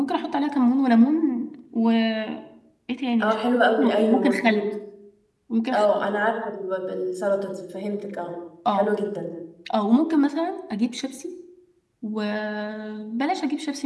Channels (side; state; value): both; identical; correlation 1.00